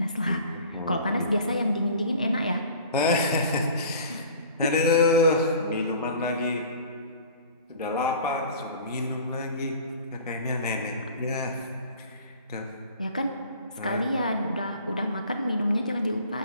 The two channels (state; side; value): inverted; both; correlation -0.46